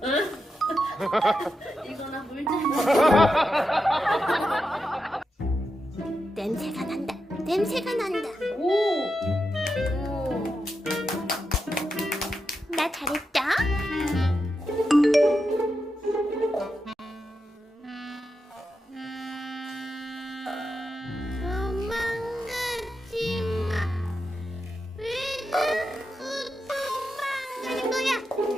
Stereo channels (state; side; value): normal; both; correlation 0.87